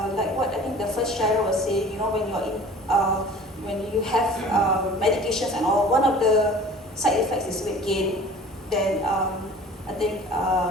what I think the first sharer was saying, when you're in, when you have medications and all, one of the side effects is weight gain. Then I think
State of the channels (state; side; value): normal; both; correlation 0.45